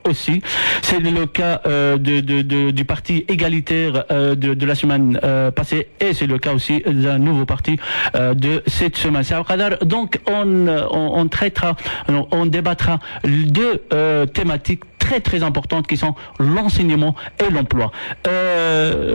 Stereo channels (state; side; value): inverted; both; correlation -1.00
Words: aussi. C'est le cas du parti égalitaire de la semaine passée et c'est le cas aussi d'un nouveau parti de cette semaine. Donc on traitera, on débattra deux thématiques très importantes qui sont l'enseignement et l'emploi.